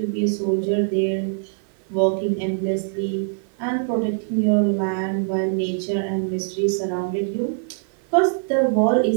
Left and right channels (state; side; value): silent; left; 57 dB below the other